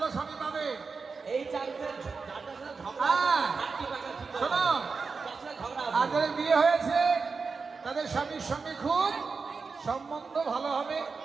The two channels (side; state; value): left; quieter; 4.8 dB